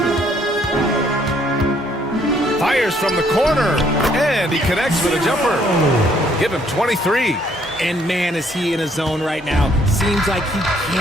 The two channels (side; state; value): both; normal; correlation 0.66